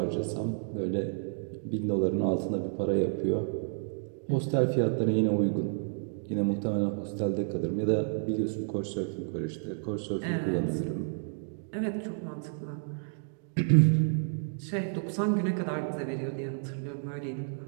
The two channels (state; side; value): silent; left; digital silence